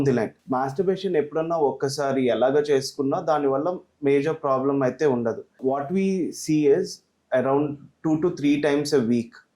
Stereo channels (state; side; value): identical; both; correlation 1.00